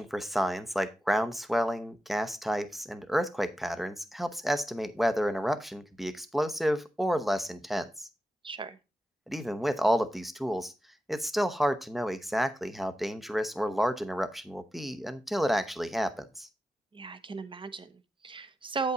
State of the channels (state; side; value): normal; both; correlation 0.91